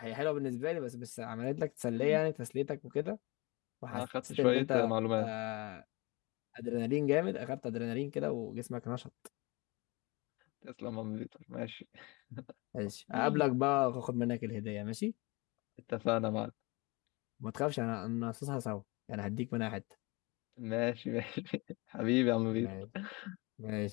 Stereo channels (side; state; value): right; quieter; 25.6 dB